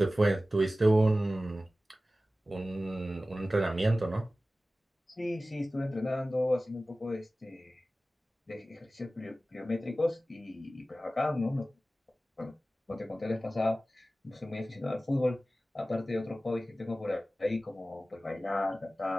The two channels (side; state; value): both; normal; correlation 0.96